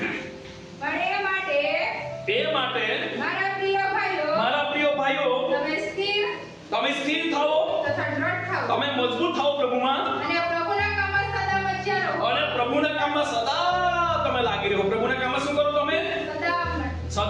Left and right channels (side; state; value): both; identical; correlation 1.00